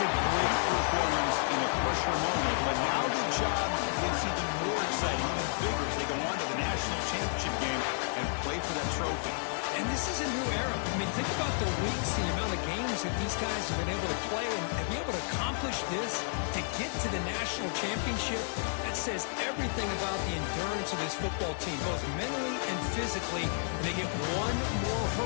a great performance in a pressure moment, but now the job gets even more exciting, even bigger as they go on to the national championship game and play for that trophy. And this is a new era. I mean, think about the weeks, the amount of games that these guys have been able to play and be able to accomplish this to get to the national championship. That says everything about the endurance of this football team, both mentally and physically. And they get one more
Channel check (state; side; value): silent; right; digital silence